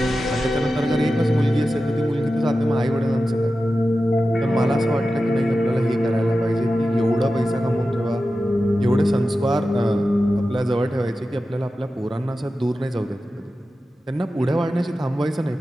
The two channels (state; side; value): normal; both; correlation 0.93